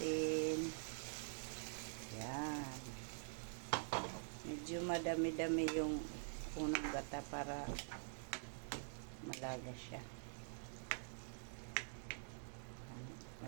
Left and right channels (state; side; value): silent; left; digital silence